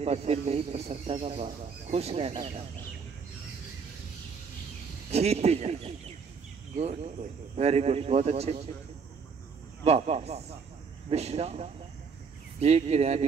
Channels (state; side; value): quieter; left; 5.7 dB